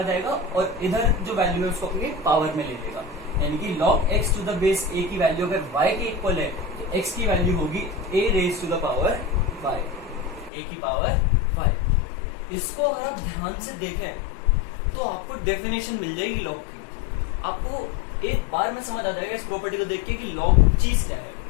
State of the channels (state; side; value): drops out; right; at 10.5 s